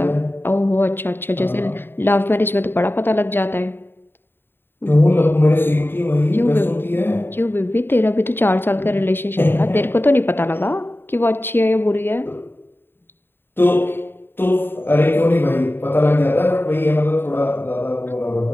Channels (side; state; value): right; late; 0.10 ms